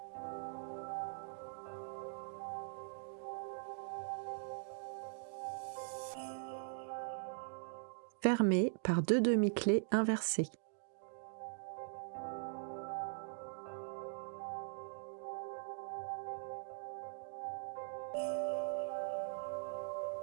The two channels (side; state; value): left; silent; digital silence